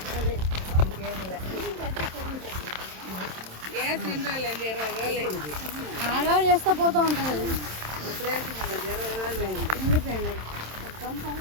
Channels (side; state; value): left; late; 27 ms